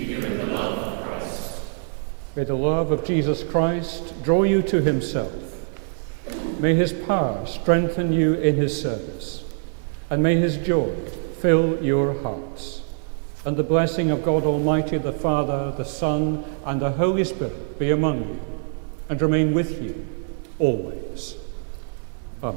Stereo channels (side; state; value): left; silent; digital silence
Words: you in the love of Christ. May the love of Jesus Christ draw you to himself. May his power strengthen you in his service. And may his joy fill your hearts. And the blessing of God Almighty, the Father, the Son, and the Holy Spirit be among you and remain with you always. Amen.